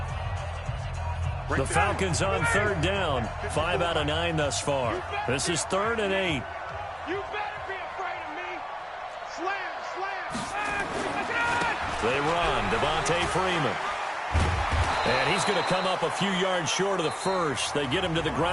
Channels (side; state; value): both; identical; correlation 1.00